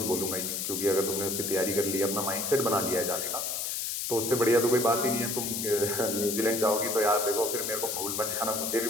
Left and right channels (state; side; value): noise; left; hiss, 2 dB below the sound